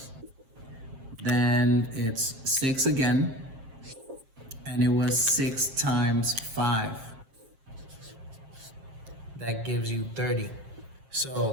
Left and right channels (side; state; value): left; late; 7.5 ms